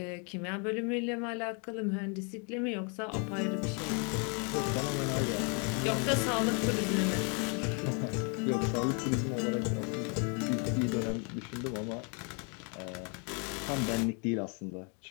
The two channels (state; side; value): quieter; right; 36.6 dB